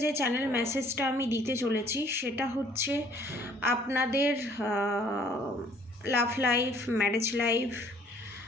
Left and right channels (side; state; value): both; normal; correlation 0.58